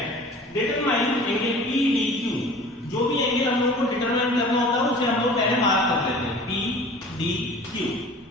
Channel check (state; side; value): normal; both; correlation 0.43